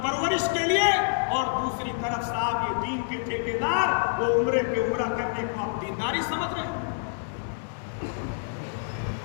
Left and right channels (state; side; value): silent; right; 60 dB below the other